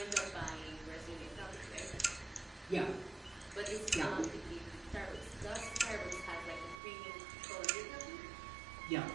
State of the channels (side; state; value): left; drops out; at 6.8 s